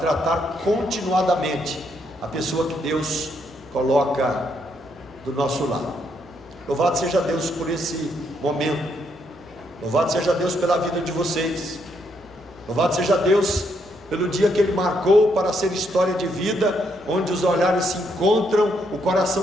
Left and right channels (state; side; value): normal; both; correlation 0.75